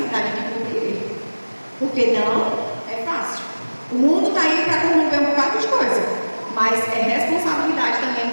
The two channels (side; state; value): both; inverted; correlation -1.00